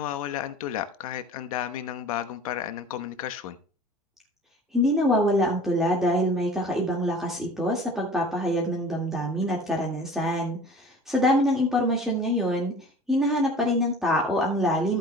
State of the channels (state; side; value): normal; both; correlation 0.43